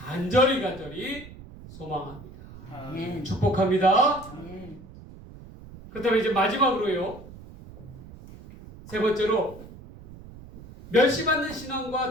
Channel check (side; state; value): right; noise; rumble, 17 dB below the sound